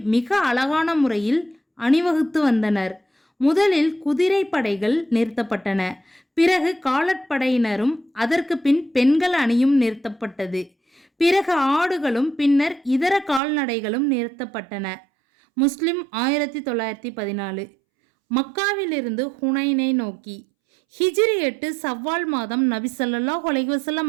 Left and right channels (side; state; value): left; drops out; at 13.4 s